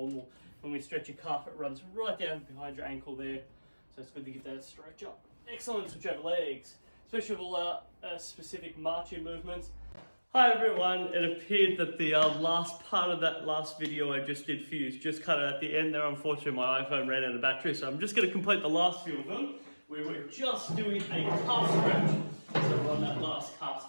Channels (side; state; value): both; inverted; correlation -1.00